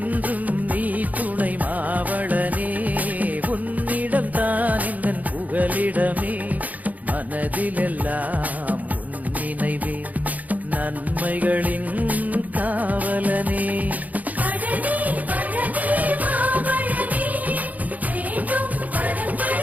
நீ துணை மாவளனே உன்னிடம் தான் இந்த புகலிடமே. மனதிலெல்லாம் உன் நினைவே நன்மைகளின் காவலனே.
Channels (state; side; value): late; left; 0.077 ms